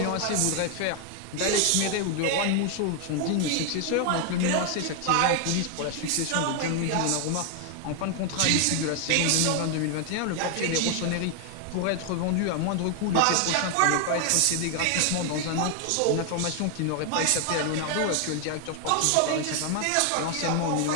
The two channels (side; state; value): both; different; correlation 0.00